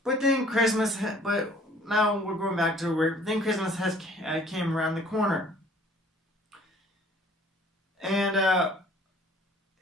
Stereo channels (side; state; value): both; normal; correlation 0.54